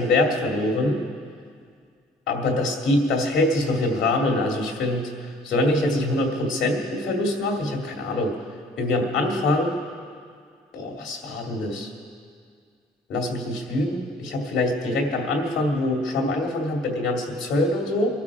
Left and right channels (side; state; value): both; normal; correlation 0.52